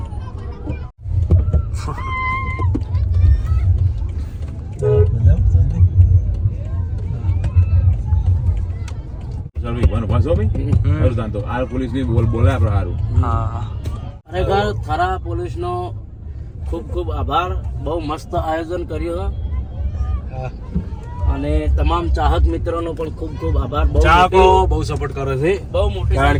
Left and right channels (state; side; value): identical; both; correlation 1.00